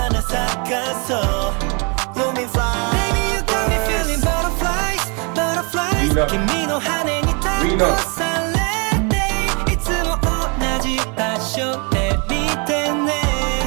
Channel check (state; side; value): quieter; left; 33.4 dB